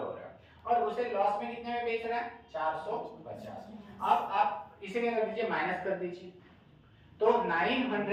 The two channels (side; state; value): both; identical; correlation 1.00